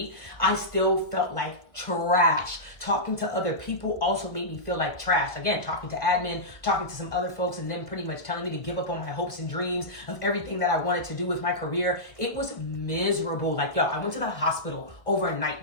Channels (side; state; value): right; late; 1.6 ms